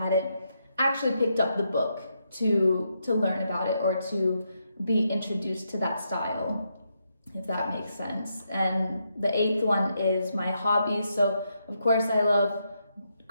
actually picked up the book to learn about it or to be introduced to that style, if that makes sense. And the 8th one is my hobbies. So of course I love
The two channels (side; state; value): both; inverted; correlation -0.81